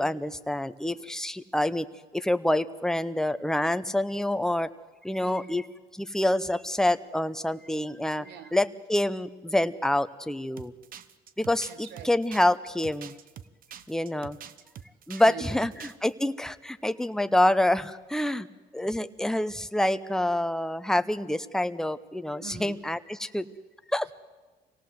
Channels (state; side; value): normal; both; correlation 0.95